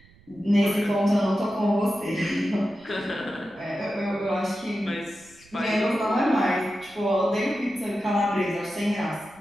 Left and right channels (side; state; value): right; noise; rumble, 27 dB below the sound